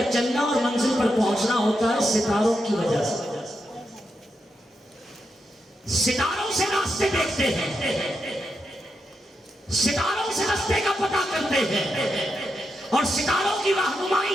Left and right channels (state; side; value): normal; both; correlation 0.85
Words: چلنا اور منزل پر پہنچنا ہوتا ہے ستاروں کی وجہ سے۔ ستاروں سے راستے دیکھتے ہیں، ستاروں سے راستے کا پتہ کرتے ہیں، اور ستاروں کی